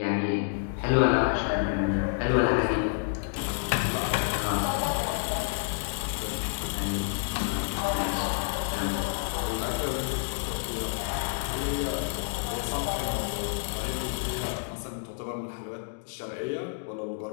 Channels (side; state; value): right; silent; digital silence